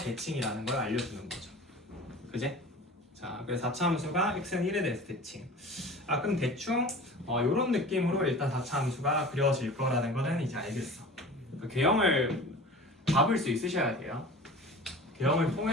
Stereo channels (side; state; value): both; normal; correlation 0.38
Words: 걸 알려주는 거죠. 그제? 자 그래서 4차 함수가 x는 1에 대해서 대칭. 그럼 대충 이런 느낌으로 일단 4차 함수가 그려질 거라는 거는 이제 알겠어. 그 개형을 잡을 수 있으셔야 돼요. 개형을